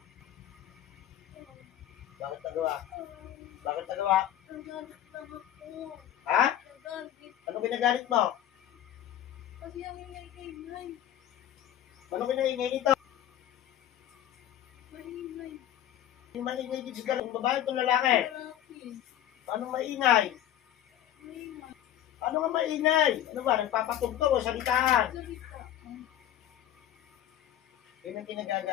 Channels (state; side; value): quieter; right; 11.6 dB